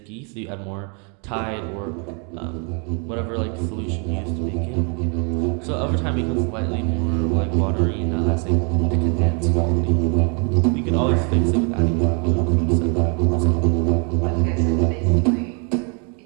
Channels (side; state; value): left; quieter; 36.5 dB